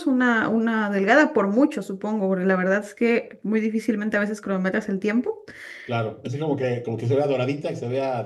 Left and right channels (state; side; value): identical; both; correlation 1.00